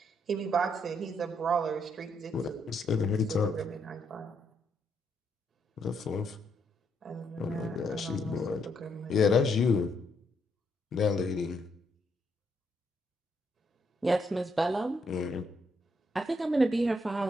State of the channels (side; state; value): both; normal; correlation 0.76